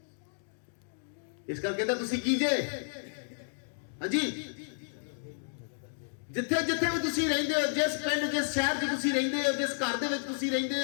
ਇਸ ਕਰਕੇ ਕਹਿੰਦਾ ਤੁਸੀਂ ਕੀ ਜੇ? ਹਾਂਜੀ, ਜਿੱਥੇ ਜਿੱਥੇ ਵੀ ਤੁਸੀਂ ਰਹਿੰਦੇ ਹੋ, ਜਿਸ ਪਿੰਡ, ਜਿਸ ਸ਼ਹਿਰ 'ਚ ਤੁਸੀਂ ਰਹਿੰਦੇ ਹੋ, ਜਿਸ ਘਰ ਦੇ ਵਿੱਚ ਤੁਸੀਂ ਰਹਿੰਦੇ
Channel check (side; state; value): right; silent; digital silence